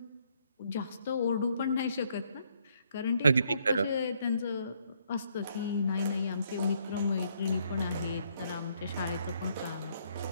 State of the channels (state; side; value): inverted; both; correlation -0.70